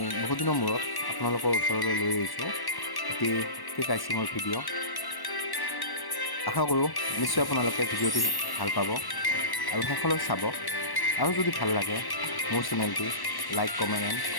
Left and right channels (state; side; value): late; right; 1.1 ms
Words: বহুত দিনৰ মূৰত আপোনালোকৰ ওচৰলৈ লৈ আহিছোঁ এটি কেক আইচিঙৰ ভিডিঅ'। আশা কৰোঁ নিশ্চয় আপোনালোকে ভিডিঅ'টি ভাল পাব আৰু শেষলৈ চাব। আৰু যদি ভাল লাগে মোৰ চেনেলটি লাইক, কমেণ্ট এণ্ড